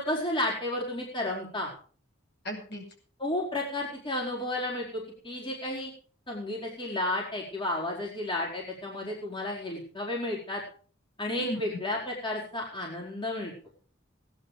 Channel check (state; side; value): normal; both; correlation 0.14